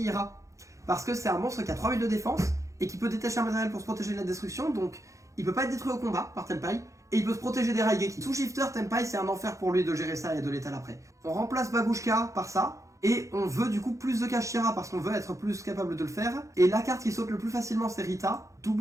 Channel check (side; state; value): left; late; 0.15 ms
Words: parce que c'est un monstre qui a 3000 de défense et qui peut détacher un matériel pour se protéger de la destruction, donc il peut pas être détruit au combat par Tenpai. Et il peut se protéger des Raigeki. Sous shifter, Tenpai c'est un enfer pour lui de gérer ça et de l'étaler après. On remplace Bagushka par ça. Et on veut du coup plus de Kashira parce qu'on veut être plus capable de le faire. Et la carte qui saute le plus facilement c'est Rita.